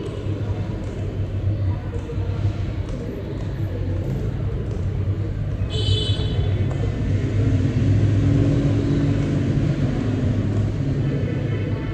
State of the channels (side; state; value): both; identical; correlation 1.00